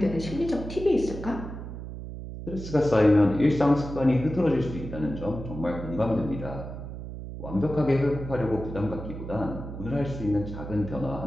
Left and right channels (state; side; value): noise; right; hum, 9 dB below the sound